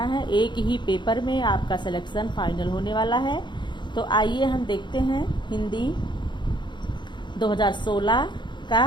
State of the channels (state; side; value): late; right; 0.22 ms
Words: है। एक ही पेपर में आपका सिलेक्शन फाइनल होने वाला है। तो आइए हम देखते हैं हिंदी 2016 का